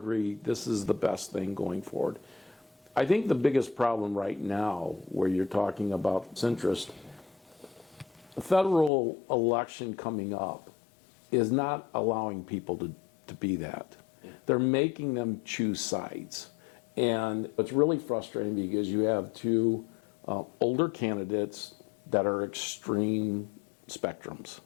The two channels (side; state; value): right; drops out; at 8.9 s